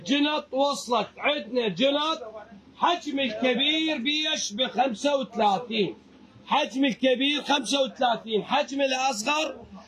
وصلت. عندنا جنط حجم الكبير بيش ب35، حجم الكبير 35، حجم الأصغر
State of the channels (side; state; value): both; identical; correlation 1.00